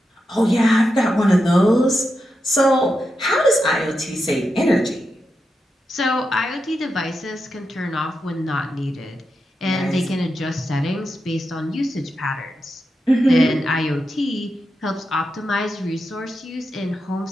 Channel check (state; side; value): normal; both; correlation 0.87